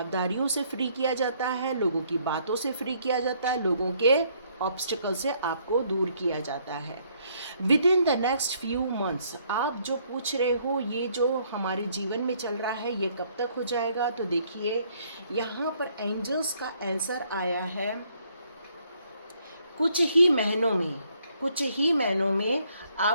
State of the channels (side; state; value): both; inverted; correlation -0.67